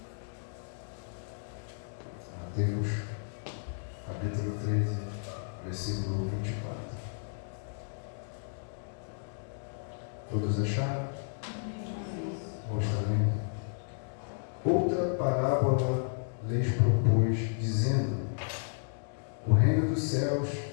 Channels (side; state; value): right; silent; digital silence